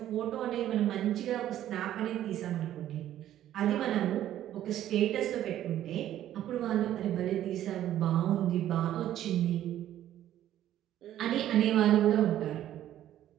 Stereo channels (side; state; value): left; quieter; 12.2 dB